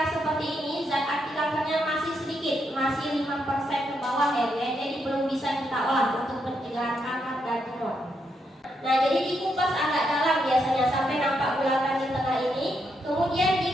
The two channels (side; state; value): both; normal; correlation 0.80